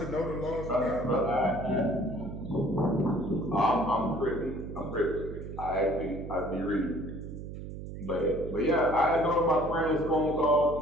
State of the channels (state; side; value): noise; right; hum, 9 dB below the sound